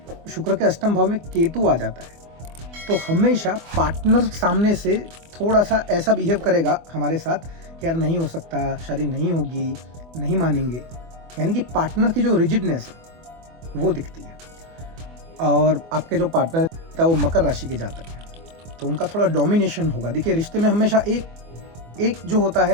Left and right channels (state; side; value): late; left; 24 ms